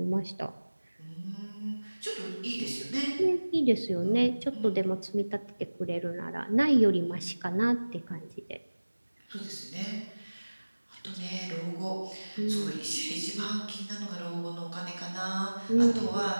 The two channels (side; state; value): both; inverted; correlation -1.00